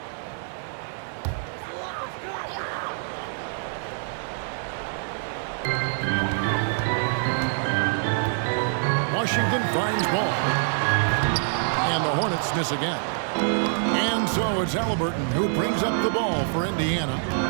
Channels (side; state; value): left; silent; digital silence